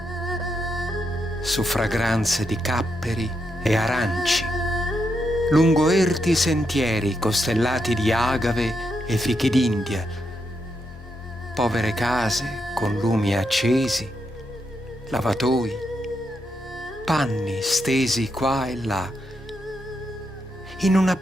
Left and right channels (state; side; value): normal; both; correlation 0.82